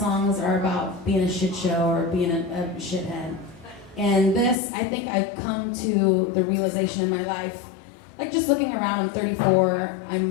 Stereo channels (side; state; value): right; drops out; at 4.5 s